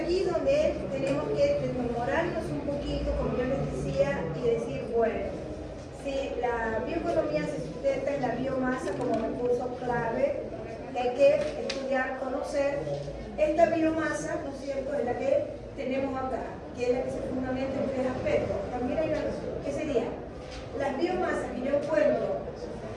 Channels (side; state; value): both; identical; correlation 1.00